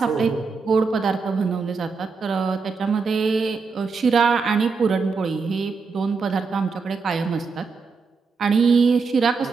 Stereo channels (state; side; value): quieter; left; 4.8 dB